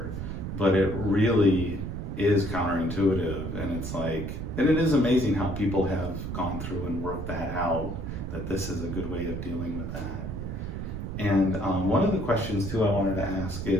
but it really is counterintuitive. And it's like, and it is amazing how people have gone through and worked that out, that this is a good way of dealing with that. And one of the questions too I wanted to ask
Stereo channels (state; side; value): noise; right; rumble, 5 dB below the sound